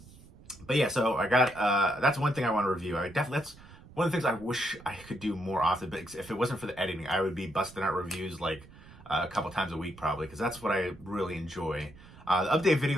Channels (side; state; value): right; noise; rumble, 21 dB below the sound